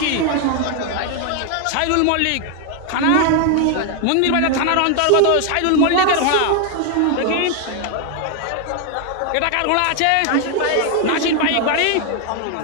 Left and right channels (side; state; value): both; different; correlation 0.01